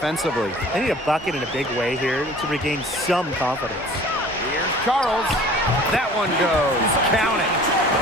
They need a bucket in a big way here to regain some confidence. Here's Charles. That one goes. Count it.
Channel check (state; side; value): normal; both; correlation 0.47